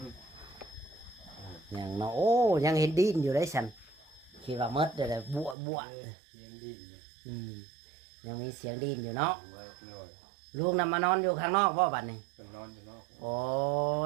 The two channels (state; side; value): drops out; left; at 5.6 s